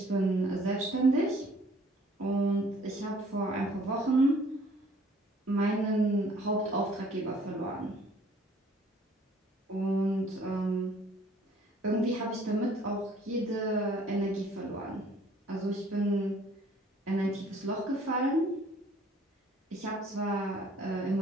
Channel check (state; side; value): normal; both; correlation 0.57